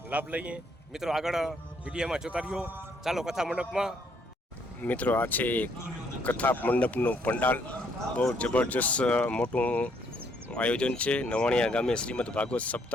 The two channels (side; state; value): both; normal; correlation 0.69